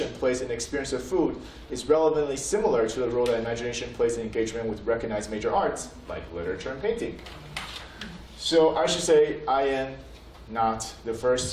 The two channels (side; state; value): both; identical; correlation 1.00